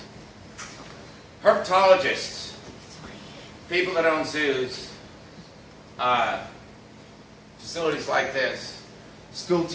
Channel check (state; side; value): identical; both; correlation 1.00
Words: herpetologists, people that own zoos, facilities like this, school